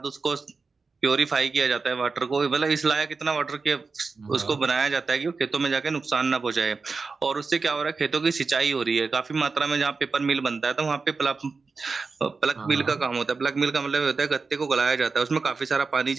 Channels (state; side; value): quieter; left; 4.4 dB